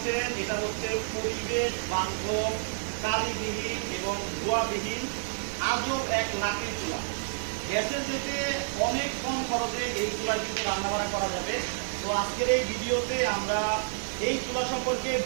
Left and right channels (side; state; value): left; silent; digital silence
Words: এটা হচ্ছে পরিবেশ বান্ধব, কালিবিহীন এবং ধোঁয়াবিহীন আজব এক লাঠির চুলা। গ্যাসের যেতে অনেক কম খরচে এই চুলা কিন্তু রান্নাবান্না করা যাবে। তো আজকের এই ভিডিওতে আমরা এই চুলা সম্পর্কে